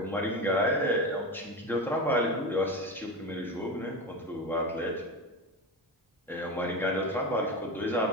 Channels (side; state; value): both; normal; correlation 0.22